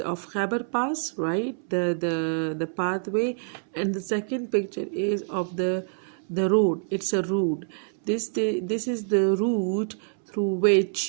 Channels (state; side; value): silent; left; 61 dB below the other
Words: of Khyber Pass, right? The pathway, and the second picture is of the road. It's a road. This is the route through